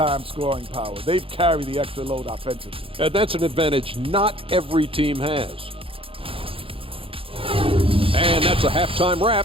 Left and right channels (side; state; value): left; late; 0.27 ms